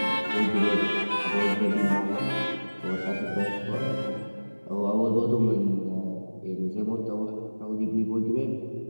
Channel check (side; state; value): both; inverted; correlation -1.00